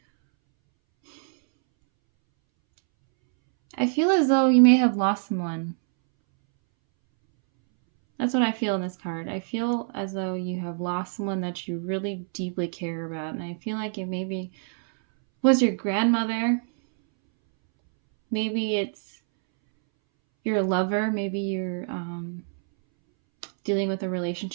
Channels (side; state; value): left; silent; 61 dB below the other